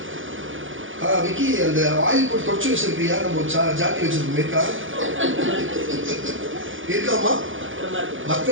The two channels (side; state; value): left; late; 0.57 ms